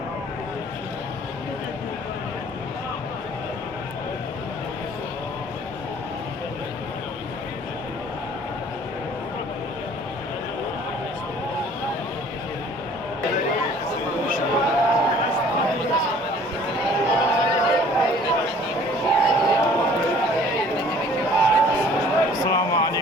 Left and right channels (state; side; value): normal; both; correlation 0.53